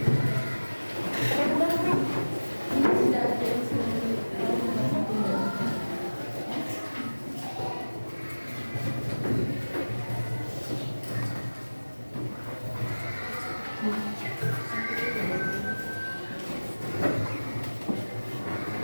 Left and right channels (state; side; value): inverted; both; correlation -1.00